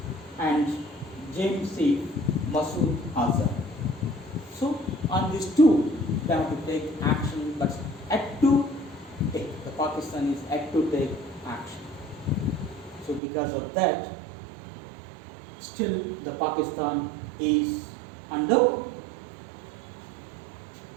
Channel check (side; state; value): left; drops out; at 13.2 s